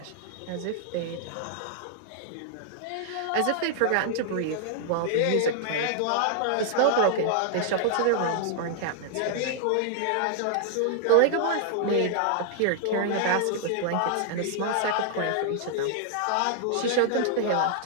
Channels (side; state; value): both; different; correlation -0.01